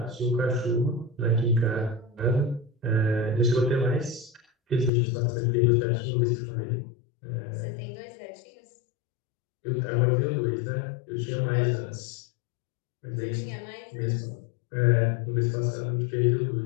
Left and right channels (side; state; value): right; drops out; at 4.9 s